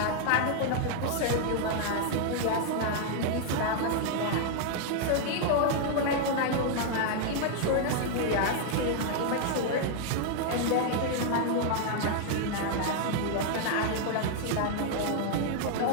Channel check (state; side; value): different; both; correlation 0.00